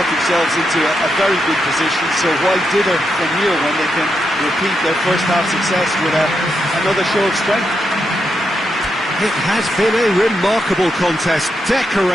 themselves into a very good position, so why dither from here when they can repeat their first half success with another show of strength? It has been a remarkable contest,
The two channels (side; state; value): both; normal; correlation 0.83